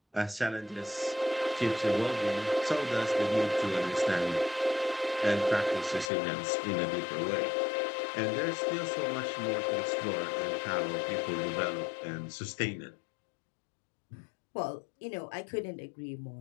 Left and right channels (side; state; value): right; drops out; at 6.1 s